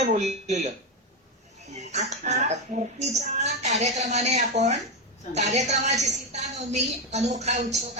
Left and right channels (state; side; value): normal; both; correlation 0.09